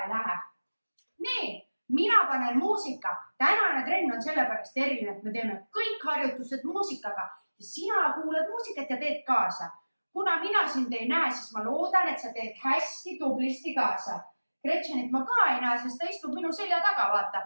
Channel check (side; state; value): both; inverted; correlation -1.00